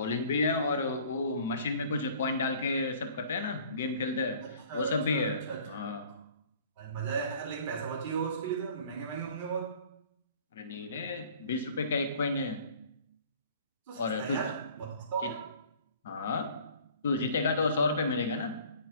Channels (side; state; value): both; inverted; correlation -0.50